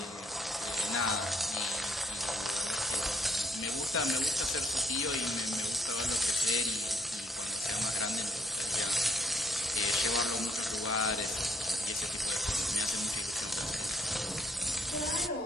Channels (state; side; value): normal; both; correlation 0.70